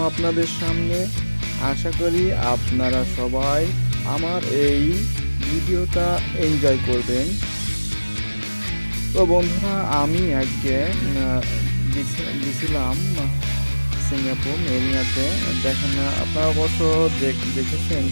আপনাদের সামনে। আশা করি আপনারা সবাই আমার এই ভিডিওটা এনজয় করবেন। তো বন্ধুরা, আমি আজকে গেছিলাম সিঙ্গাপুর মেরিনাতে। দেখেন, আপনারা অবশ্য দেখেছেন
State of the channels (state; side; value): inverted; both; correlation -1.00